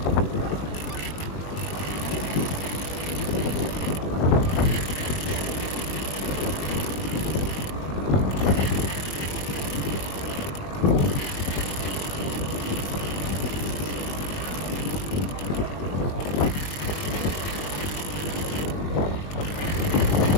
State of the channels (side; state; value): right; late; 21 ms